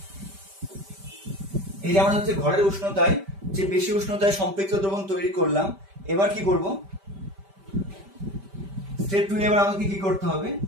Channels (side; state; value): left; late; 5.1 ms